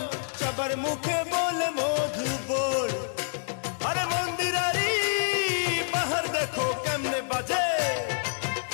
সবার মুখে বলে মধু বল। আরে মন্দিরারি বাহার দেখো কেমনে বাজে,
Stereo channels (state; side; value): silent; right; digital silence